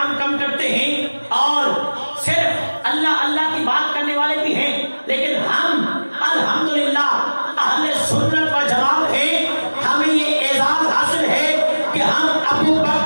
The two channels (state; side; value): inverted; both; correlation -1.00